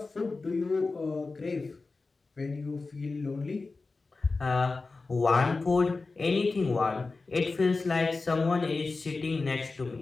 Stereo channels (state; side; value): quieter; right; 3.8 dB